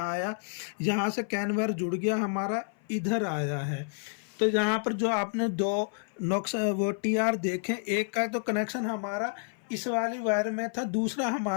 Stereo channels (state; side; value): silent; right; 55 dB below the other